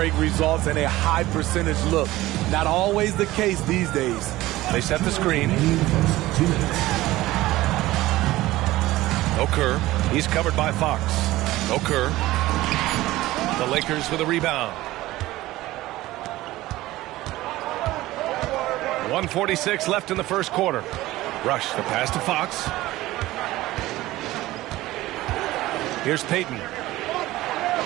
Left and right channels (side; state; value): left; quieter; 17.2 dB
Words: results in a high percentage look. Not always the case these days. They set the screen. Okur. He's covered by Fox. Okur. The Lakers with a rebound. 1:46 left in the first quarter. Rush the pass to Fox. Here's Payton.